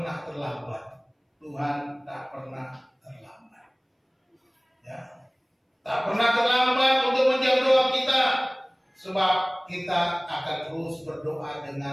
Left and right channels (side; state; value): both; identical; correlation 1.00